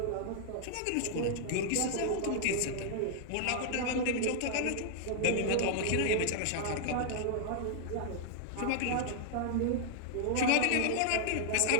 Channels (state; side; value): different; both; correlation -0.01